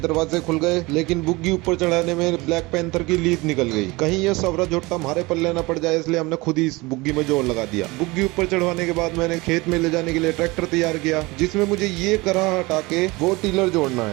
खुल गए, लेकिन बुग्गी ऊपर चढ़ाने में ब्लैक पैंथर की लीद निकल गई। कहीं ये सवरा झोटा हमारे पल्ले न पड़ जाए, इसलिए हमने खुद ही इस बुग्गी में जोर लगा दिया। बुग्गी ऊपर चढ़वाने के बाद मैंने खेत में ले जाने के लिए ट्रैक्टर तैयार किया, जिसमें मुझे ये करा हटा के वो टीलर जोड़ना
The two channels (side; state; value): left; quieter; 23.1 dB